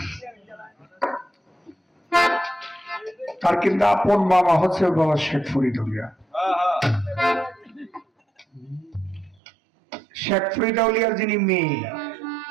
তার কিন্তু আপন মামা হচ্ছে বাবা শেখ ফরিদ আউলিয়া। শেখ ফরিদ আউলিয়ার যিনি মেয়ে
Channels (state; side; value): drops out; left; at 9.4 s